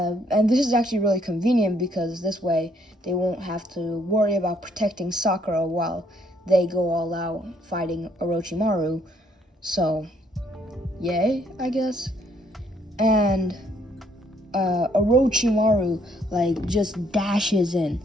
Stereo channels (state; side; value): normal; both; correlation 0.67